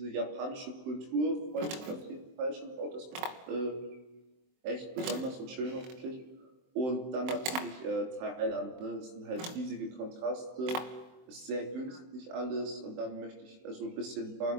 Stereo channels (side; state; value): left; late; 23 ms